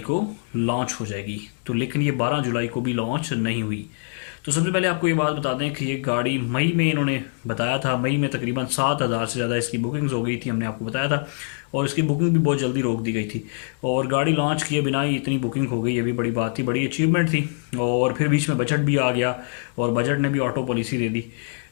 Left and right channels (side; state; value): right; silent; digital silence